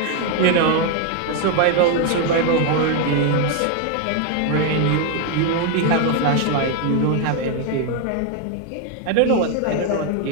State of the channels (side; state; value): both; different; correlation 0.01